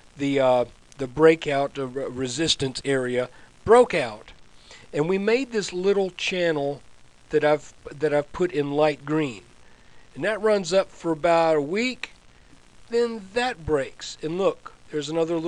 the breakout resistance area, broke out. And we made this little channel that I've put in light green. And that runs up for about a week. Then that breaks. And look, there's another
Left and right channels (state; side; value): identical; both; correlation 1.00